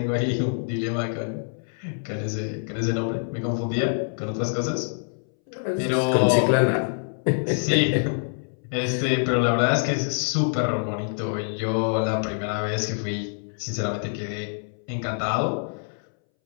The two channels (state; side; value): silent; right; 61 dB below the other